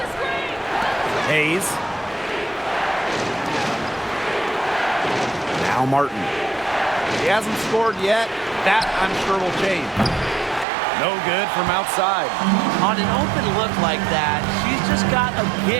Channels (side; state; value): left; drops out; at 10.7 s